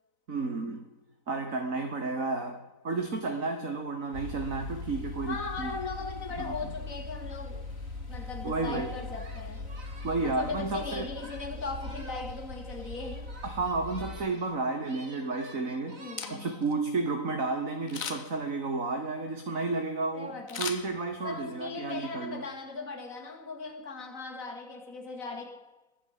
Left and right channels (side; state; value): left; late; 4.0 ms